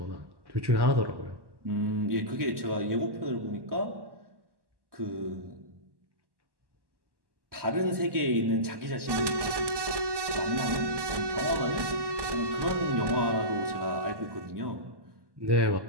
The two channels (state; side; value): late; left; 1.1 ms